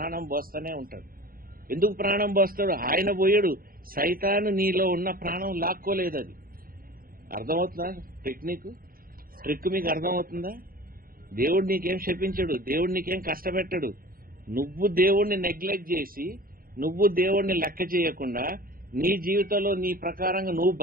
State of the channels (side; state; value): left; late; 0.42 ms